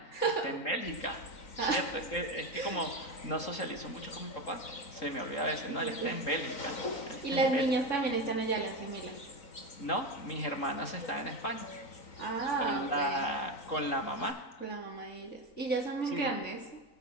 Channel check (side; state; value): right; late; 3.7 ms